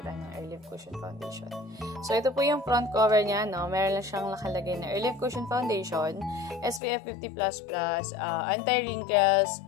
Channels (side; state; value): right; drops out; at 6.8 s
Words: ng Airlift Cushion Foundation. So, ito po yung front cover niya, no? Meron lang siyang nakalagay na Airlift Cushion Foundation, SPF 50++, anti-wrinkles,